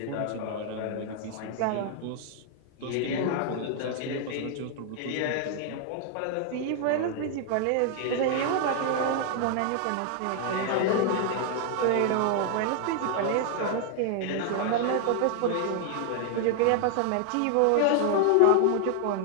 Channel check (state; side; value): different; both; correlation 0.00